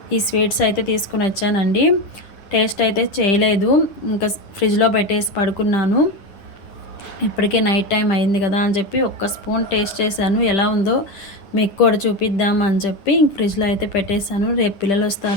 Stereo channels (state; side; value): late; right; 10 ms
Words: ఈ స్వీట్స్ అయితే తీసుకుని వచ్చానండి. టేస్ట్ అయితే చేయలేదు, ఇంకా ఫ్రిడ్జ్లో పెట్టేసి పడుకున్నాను. ఇప్పటికే నైట్ టైం అయింది కదా అని చెప్పి ఒక్క స్పూన్ టేస్ట్ చేశాను, ఎలా ఉందో మీకు కూడా చూపిద్దాం అని చెప్పి ఇంక ఫ్రిడ్జ్లో అయితే పెట్టేశాను. రేపు పిల్లలు